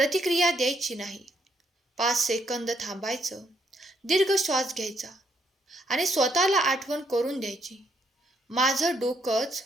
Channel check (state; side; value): normal; both; correlation 0.73